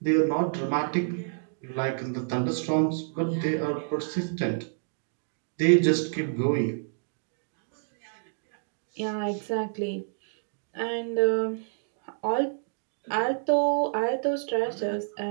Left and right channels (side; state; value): left; silent; digital silence